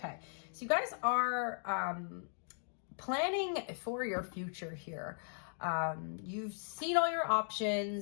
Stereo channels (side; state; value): right; silent; digital silence